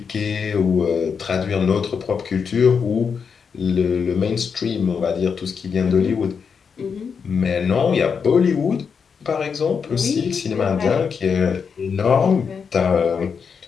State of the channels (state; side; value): quieter; right; 6.2 dB